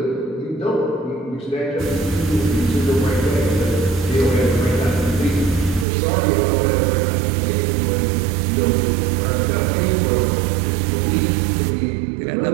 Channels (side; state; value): left; drops out; at 5.9 s